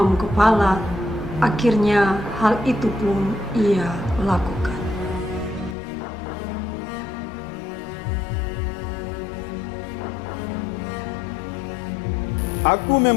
kepala, akhirnya hal itu pun ia lakukan. Aku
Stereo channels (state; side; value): drops out; right; at 5.8 s